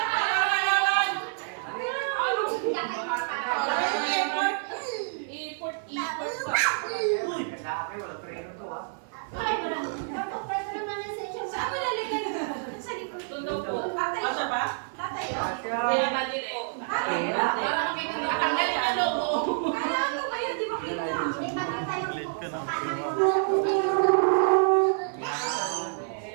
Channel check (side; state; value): left; silent; 59 dB below the other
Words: Malit ka na.